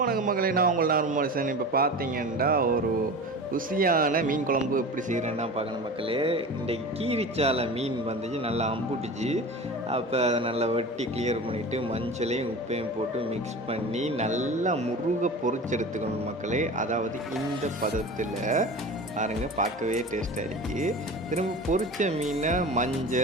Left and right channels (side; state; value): both; normal; correlation 0.33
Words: மக்களே, நான் உங்கள் நார்மல் மனுஷன். இப்போ பார்த்தீங்கன்னா ஒரு ருசியான மீன் குழம்பு எப்படி செய்கிறேன்னா பார்க்கணும் மக்களே. இன்றைக்கி கீரிச்சாலை மீன் வந்துச்சு, நல்லா அம்புட்டுச்சு. அப்போ அதை நல்லா வெட்டி கிளியர் பண்ணிவிட்டு மஞ்சளையும் உப்பையும் போட்டு மிக்ஸ் பண்ணி நல்லா முருக பொரிச்செடுத்துக்கணும் மக்களே. அதாவது இந்த பதத்தில் பாருங்கள், பார்க்கவே டேஸ்ட்டாக இருக்குது. திரும்ப பொரிச்ச மீனை